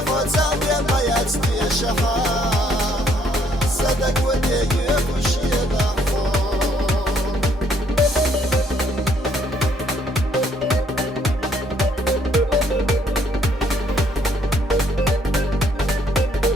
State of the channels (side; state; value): both; normal; correlation 0.67